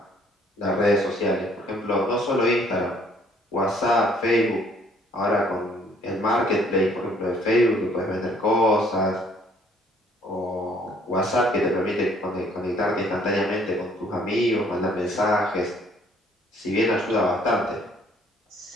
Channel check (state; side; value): normal; both; correlation 0.61